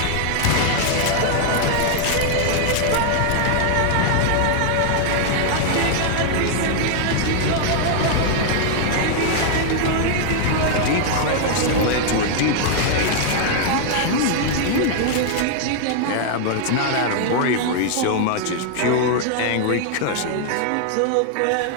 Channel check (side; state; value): both; different; correlation 0.00